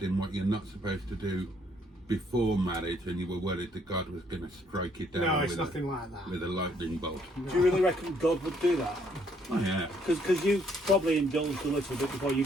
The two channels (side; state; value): both; normal; correlation 0.67